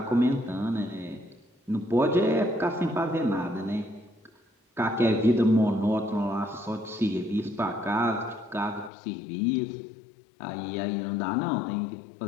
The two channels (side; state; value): right; drops out; at 8.9 s